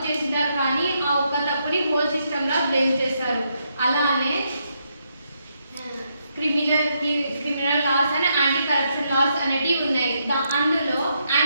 చేసినారు కానీ ఆ ఒక్క తప్పుని హోల్ సిస్టమ్లా బ్లేమ్ చేస్తారు. అలానే criminal laws and anti corruption laws అనేటివి ఉన్నాయి. అందులో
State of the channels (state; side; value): inverted; both; correlation -0.78